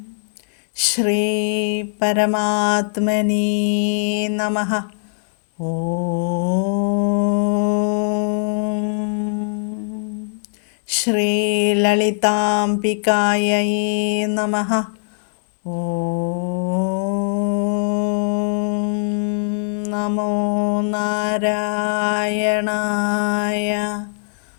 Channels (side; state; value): right; silent; digital silence